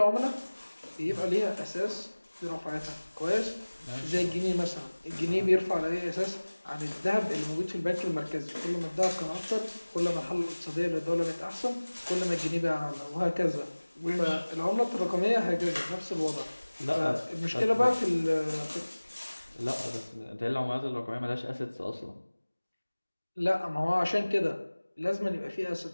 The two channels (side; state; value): both; inverted; correlation -1.00